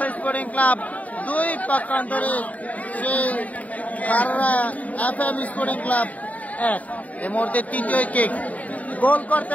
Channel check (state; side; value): late; right; 0.071 ms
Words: স্পোর্টিং ক্লাব 2 পক্ষান্তরে সে খাররা এফএম স্পোর্টিং ক্লাব 1। এই মুহূর্তে তৃতীয় কিক। গোল